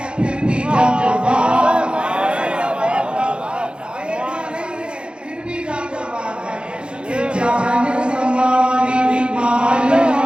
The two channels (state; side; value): late; left; 0.054 ms